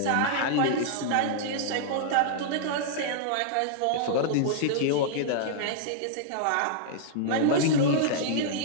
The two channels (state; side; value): different; both; correlation -0.01